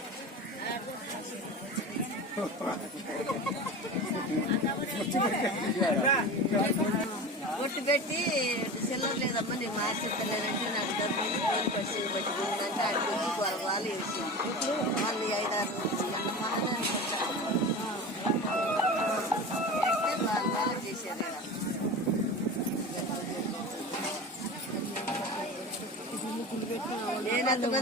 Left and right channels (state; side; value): normal; both; correlation 0.30